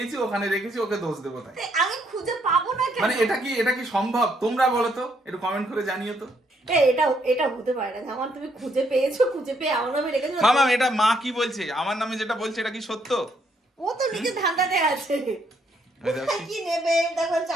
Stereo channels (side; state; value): both; normal; correlation 0.72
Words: ওখানে রেখেছি, ওকে দোষ দেবো। তাই আমি খুঁজে পাবো না কেন? মানে এটা কি সম্ভব? তোমরা বলো তো, একটু কমেন্ট করে জানিও তো। এটা হতে পারে না যেমন তুমি খুঁজে পেয়েছো, খুঁজে পেয়ে আমার নামে রেখেছো। মামা এটা মা কি বলছে, আমার নামে যেটা বলছে এটা কি সত্য? ও তো নিজে ধান্দাতে আছে, কি নেবে দেখো,